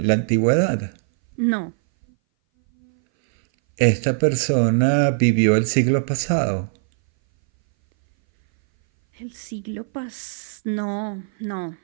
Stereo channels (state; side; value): silent; left; 60 dB below the other